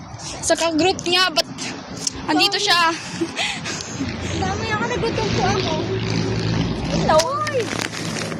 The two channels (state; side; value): identical; both; correlation 1.00